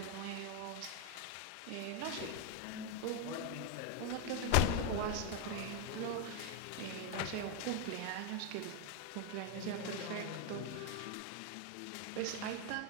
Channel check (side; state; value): both; different; correlation 0.01